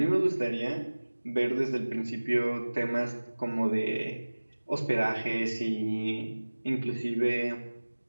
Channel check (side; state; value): both; inverted; correlation -1.00